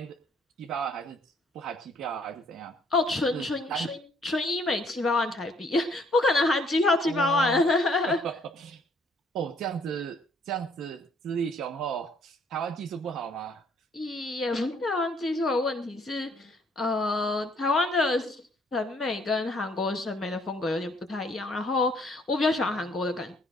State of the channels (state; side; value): normal; both; correlation 0.64